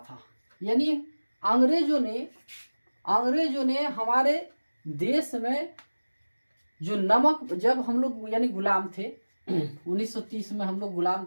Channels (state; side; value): inverted; both; correlation -1.00